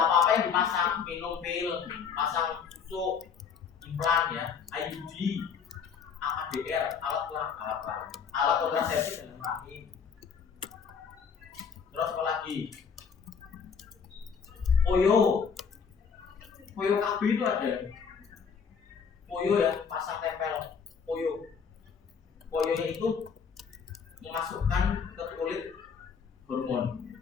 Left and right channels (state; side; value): quieter; right; 6.4 dB